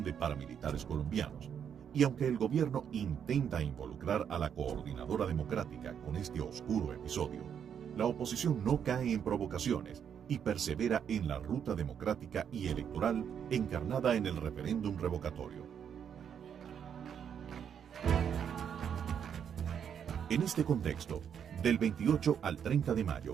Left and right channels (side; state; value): left; quieter; 8.1 dB